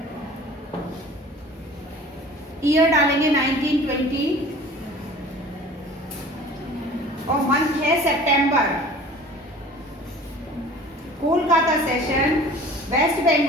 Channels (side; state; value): both; normal; correlation 0.44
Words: ईयर डालेंगे 1920 और मंथ है सितंबर। कोलकाता सेशन वेस्ट